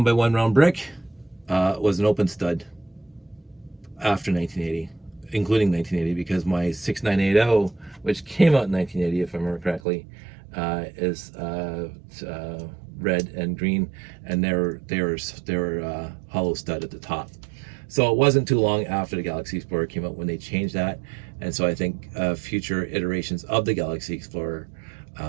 round brick was an open stud after 1980, including 1980, because my 6980, which came out in 1980, if I remember correctly, is red and green, and they were hollow stud at the top. So it wasn't too long after the Galaxy Explorer came out when they changed that, and so I think future iterations of the Galaxy Explorer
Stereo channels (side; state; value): left; drops out; at 9.8 s